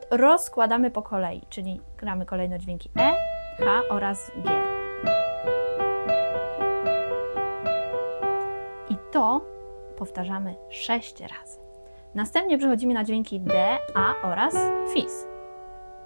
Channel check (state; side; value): inverted; both; correlation -1.00